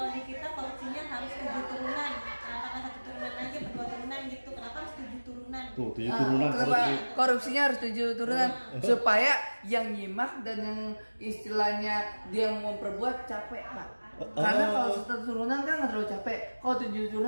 di kita korupsinya harus 7 turunan? Apakah 1 turunan aja, 2 turunan gitu? Kenapa harus 7 turunan? Tuh, 7 turunan korupsinya harus 7 turunan supaya yang nyimak dan yang istilahnya dia mau memperbuat capek, Pak. Karena kalau 1 turunan kan nggak terlalu capek. Kalau 7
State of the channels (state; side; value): inverted; both; correlation -1.00